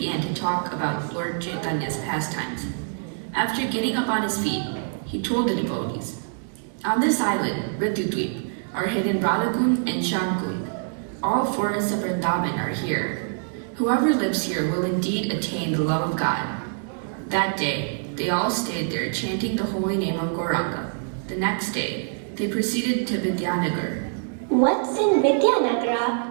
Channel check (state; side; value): silent; left; 60 dB below the other